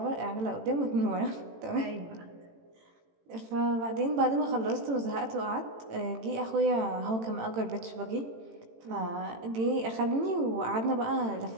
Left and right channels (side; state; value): left; late; 18 ms